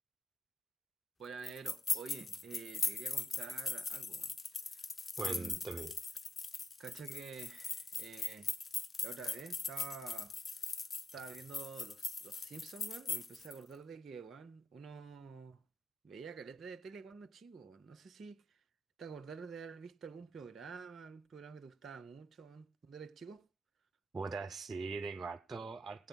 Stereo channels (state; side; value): normal; both; correlation 0.85